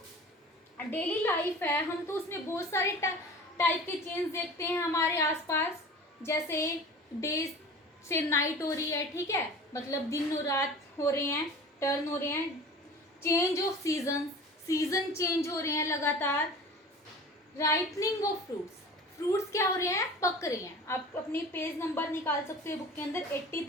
डेली लाइफ है हम तो उसमें बहुत सारे टाइप के चेंज देखते हैं हमारे आसपास। जैसे डे से नाइट हो रही है, ठीक है, मतलब दिन और रात हो रहे हैं, टर्न हो रहे हैं। चेंज ऑफ सीजन चेंज हो रहे हैं लगातार। राइपनिंग ऑफ फ्रूट्स क्या हो रहे हैं? पक रहे हैं। आप अपनी पेज नंबर निकाल सकते हैं बुक के अंदर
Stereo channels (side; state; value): both; normal; correlation 0.39